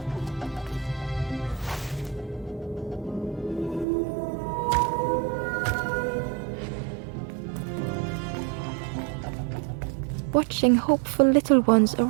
Watching hopeful little ones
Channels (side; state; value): left; drops out; at 3.9 s